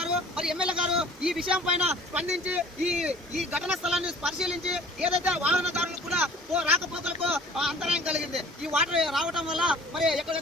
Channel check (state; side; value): normal; both; correlation 0.50